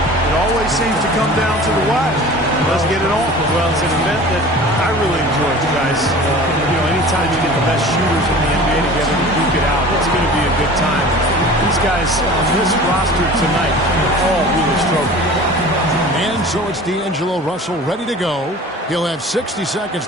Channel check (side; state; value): both; normal; correlation 0.41